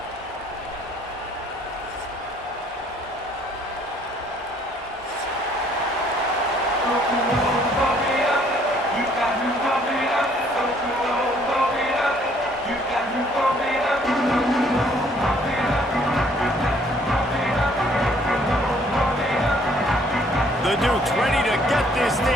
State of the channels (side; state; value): both; normal; correlation 0.62